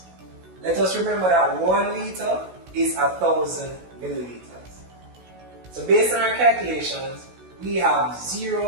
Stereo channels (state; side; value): late; left; 16 ms